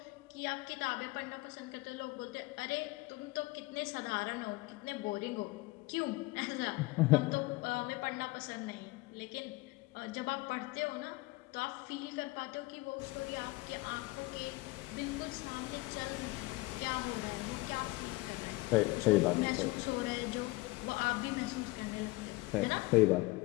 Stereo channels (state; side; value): quieter; right; 22.2 dB